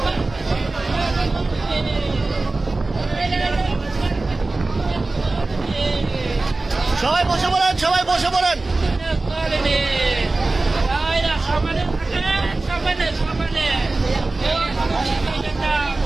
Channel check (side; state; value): left; quieter; 3.2 dB